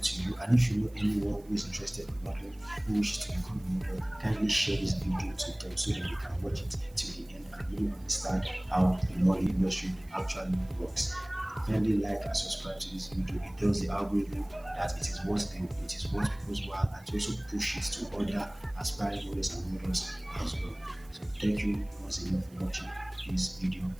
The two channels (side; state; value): right; noise; hiss, 27 dB below the sound